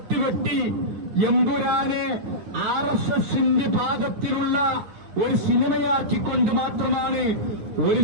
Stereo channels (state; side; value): late; left; 9.2 ms